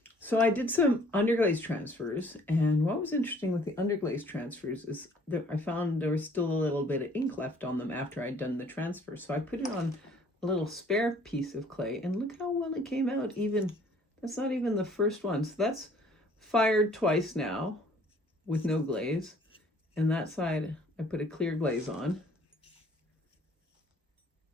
so I did some underglaze transfers, and what was interesting with the underglaze transfers is that I found there was still a little bit of ink left on them after I'd done the transfer. So I put it on a little spare piece of clay, and look how well it came out. Even that's not even the first one. So that's fired twice now with no glaze, and that side I put a clear glaze on,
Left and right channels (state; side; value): normal; both; correlation 0.57